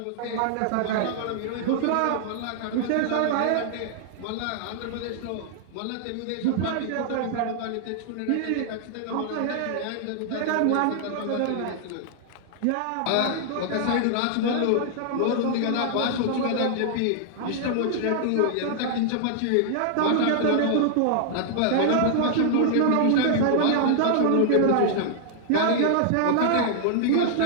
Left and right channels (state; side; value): different; both; correlation 0.00